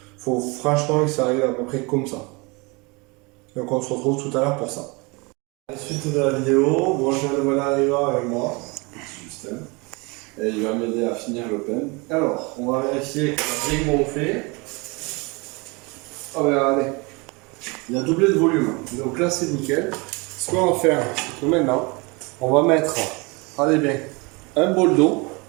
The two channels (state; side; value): quieter; left; 27.8 dB